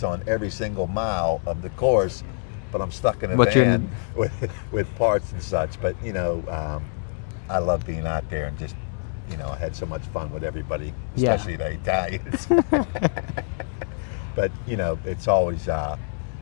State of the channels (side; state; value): right; silent; 62 dB below the other